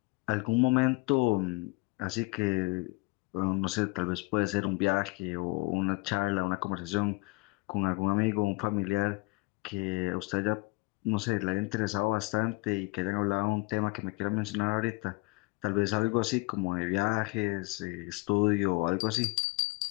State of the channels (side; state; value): right; quieter; 26.3 dB